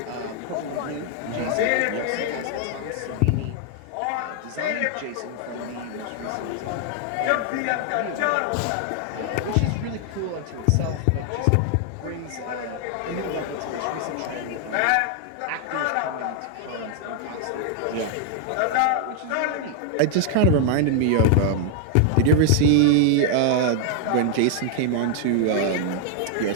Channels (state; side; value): different; both; correlation 0.00